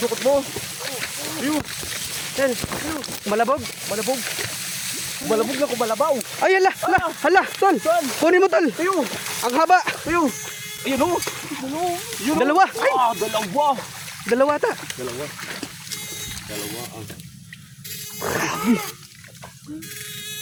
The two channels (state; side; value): identical; both; correlation 1.00